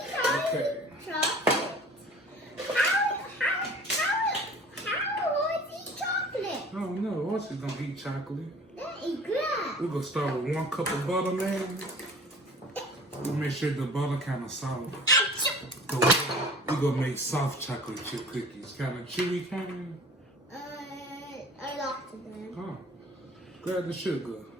Chocolate. How was eat chocolate? Oh no, horses don't eat chocolate. That is good. We're gonna start with 1 cup of butter, man. We'll make sure the butter kind of soft. We're gonna make soft chocolate chip cookies. Kind of chewy kind. I like them. Oh. Grab the sugar.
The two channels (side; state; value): both; normal; correlation 0.45